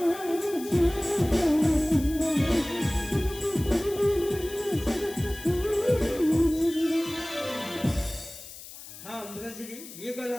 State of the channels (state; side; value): noise; left; hiss, 15 dB below the sound